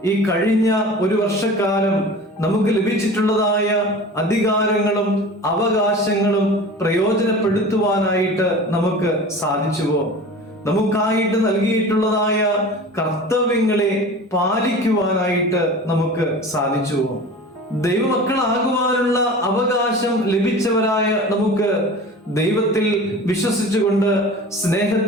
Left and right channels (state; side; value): normal; both; correlation 0.37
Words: ഈ കഴിഞ്ഞ ഒരു വർഷക്കാലം നമുക്ക് ലഭിച്ചിട്ടുള്ളതായ അധികാരങ്ങളും അവകാശങ്ങളും പ്രയോജനപ്പെടുത്തുവാനായിട്ട് നമുക്ക് സാധിച്ചുവോ? നമുക്കായിട്ട് നൽകിയിട്ടുള്ളതായ കർത്തവ്യങ്ങളെ പാലിക്കുവാനായിട്ട് നമുക്ക് സാധിച്ചുവോ? ദൈവമക്കളാകുവാനുള്ള അവകാശം ലഭിച്ചവരായ നമുക്ക് ദൈവത്തിൽ വിശ്വസിച്ചുകൊണ്ട്